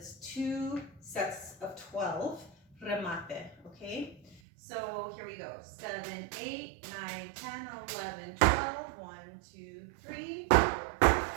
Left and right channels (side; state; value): left; drops out; at 4.4 s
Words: 2 sets of 12 remate, okay? So here we go, 7, 8, 9, 10, 11, 12, 1, 2, 3, 4,